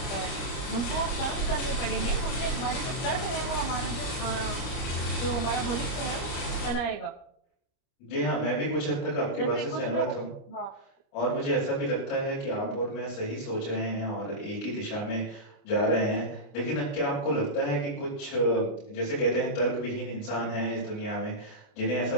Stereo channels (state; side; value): late; right; 29 ms